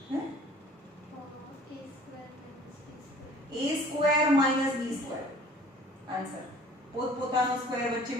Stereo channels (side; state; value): both; normal; correlation 0.50